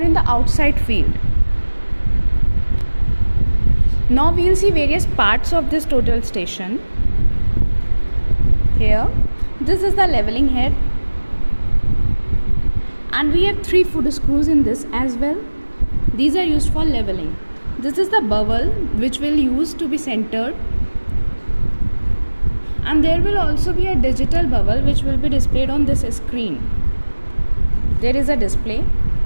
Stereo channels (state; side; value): inverted; both; correlation -1.00